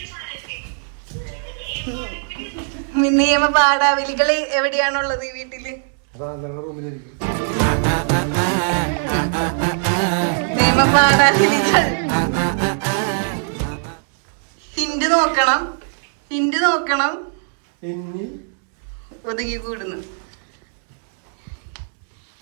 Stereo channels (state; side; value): silent; left; digital silence